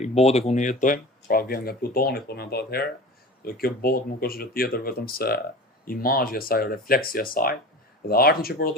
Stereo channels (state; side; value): normal; both; correlation 0.35